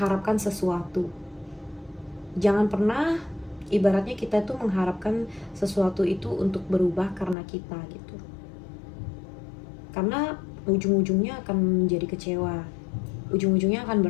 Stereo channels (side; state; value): right; drops out; at 7.4 s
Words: sesuatu. Jangan pernah ibaratnya kita tuh mengharapkan sesuatu itu untuk berubah karena kita gitu, karena ujung-ujungnya akan menjadi kecewa, ujung-ujungnya akan